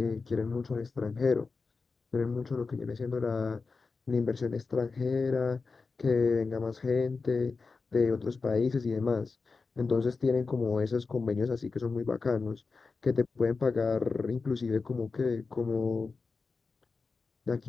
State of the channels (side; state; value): right; quieter; 4.4 dB